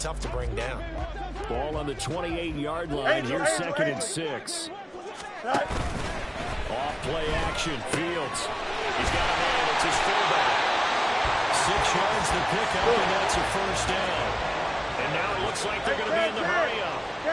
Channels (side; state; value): both; identical; correlation 1.00